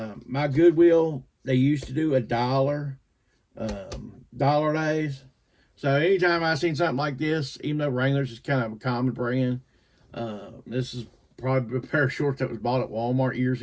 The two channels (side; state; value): both; identical; correlation 1.00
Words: My Goodwill, they used to do $1. Dollar days. So anytime I seen something like this, even though Wrangler's is kind of a common brand, this is probably a pair of shorts that was bought at Walmart years